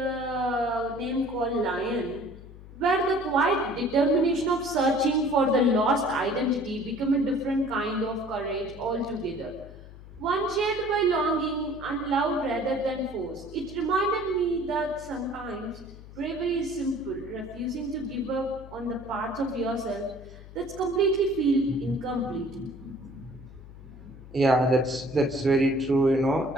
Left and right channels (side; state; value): left; noise; hum, 17 dB below the sound